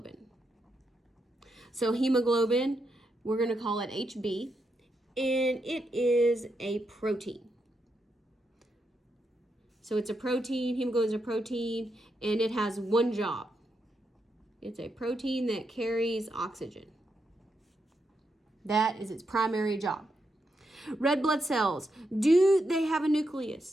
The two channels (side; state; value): both; normal; correlation 0.83